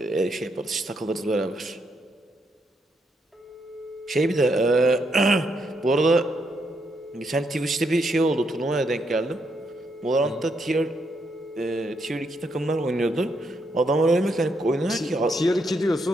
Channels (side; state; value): both; normal; correlation 0.77